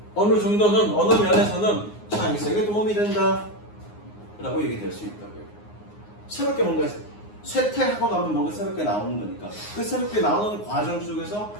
어느 면에서는 창의성에 도움이 된다 라고 얘기될 수 있다고요. 새롭게 뭔가 쇠퇴하고 나면 뭔가 새롭게 나오는 거니까 그 새롭게 나오는 과정 속에서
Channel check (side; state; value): right; late; 9.6 ms